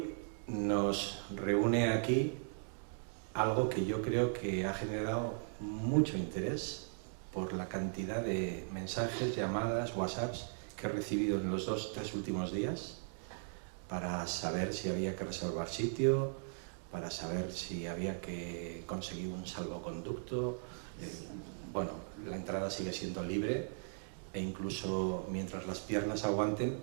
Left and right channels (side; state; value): left; silent; digital silence